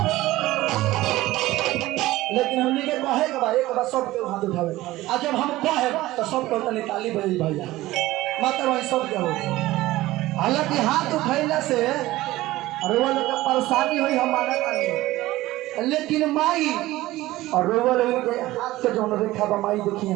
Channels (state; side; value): quieter; left; 17.2 dB